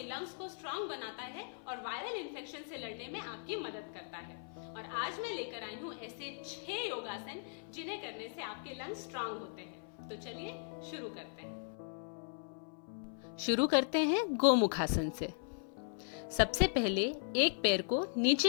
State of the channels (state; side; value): silent; right; 53 dB below the other